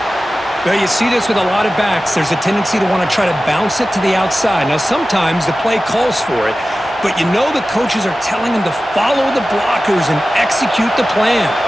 Well, you see this with a lot of backs. There's a tendency to want to try to bounce it to the outside. Now, sometimes the play calls for it, but you know the coaches are telling him to follow the blockers and execute the plan.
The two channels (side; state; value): both; normal; correlation 0.95